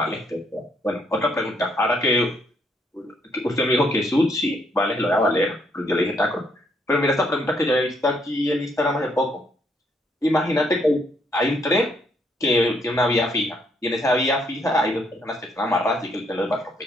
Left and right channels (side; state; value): both; normal; correlation 0.71